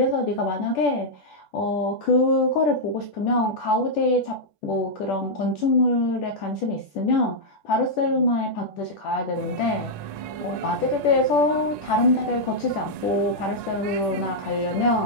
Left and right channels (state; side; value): late; right; 10 ms